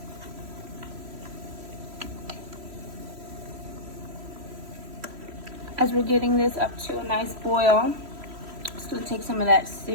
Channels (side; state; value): left; late; 3.0 ms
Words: As we're getting this up to a nice boil, I'm just gonna take some of that